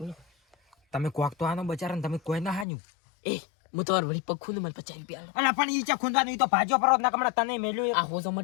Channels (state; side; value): drops out; right; at 2.7 s